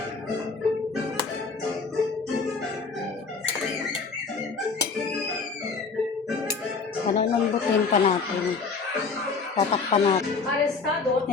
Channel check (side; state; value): right; quieter; 4.7 dB